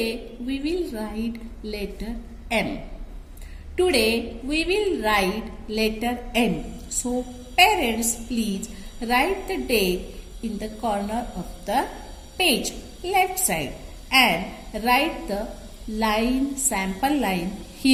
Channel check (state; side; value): identical; both; correlation 1.00